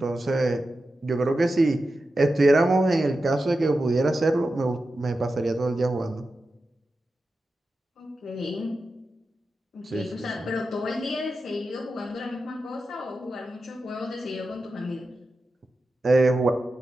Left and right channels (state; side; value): normal; both; correlation 0.91